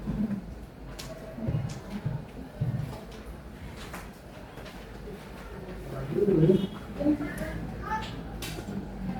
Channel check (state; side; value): identical; both; correlation 1.00